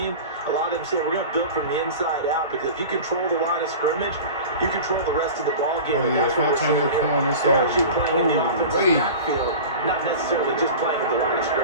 a lot of them say we're going to build from the inside out because if you control the line of scrimmage, you control the rest of the ball game. Oh yeah, if I turn this corner, it's over. Oh, backfield, not necessarily just playing at the line of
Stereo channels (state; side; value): inverted; both; correlation -0.34